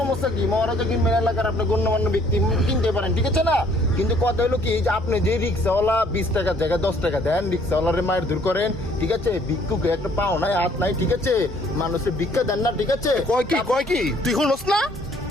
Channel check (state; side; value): normal; both; correlation 0.61